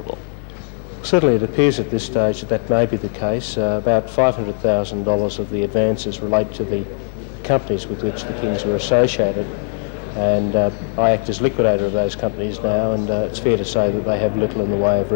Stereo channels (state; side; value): silent; right; digital silence